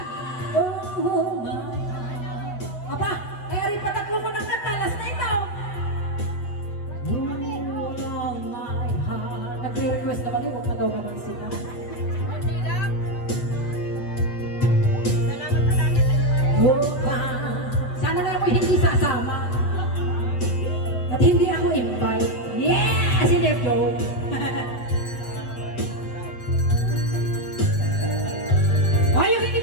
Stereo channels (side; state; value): right; late; 8.0 ms